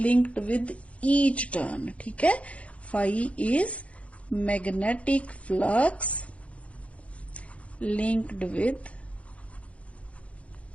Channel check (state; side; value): late; right; 0.063 ms